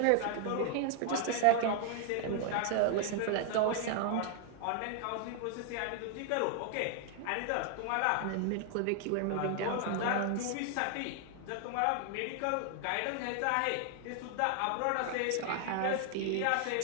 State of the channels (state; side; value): different; both; correlation 0.00